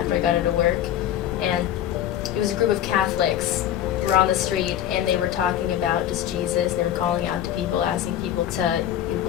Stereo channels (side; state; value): right; quieter; 11.2 dB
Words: I got out of work, and it was a group of Catholics who were on the street, and they were talking about just Jesus, and they were calling out to people, asking people to